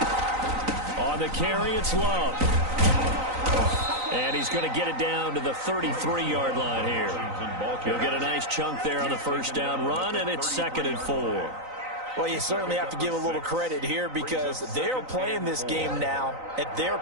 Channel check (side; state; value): left; late; 3.9 ms